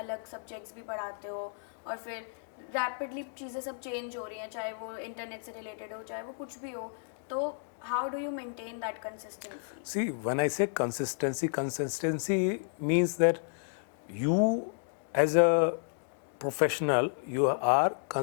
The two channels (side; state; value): right; silent; digital silence